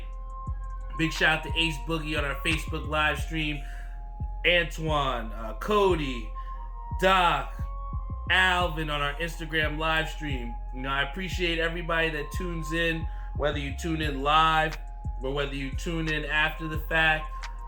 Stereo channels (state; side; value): identical; both; correlation 1.00